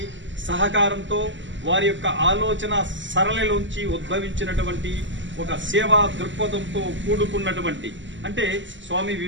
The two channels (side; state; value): left; late; 0.54 ms